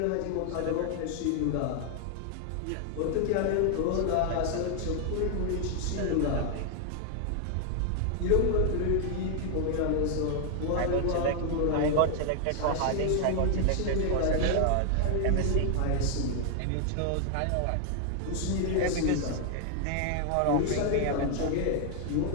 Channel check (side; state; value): both; different; correlation 0.00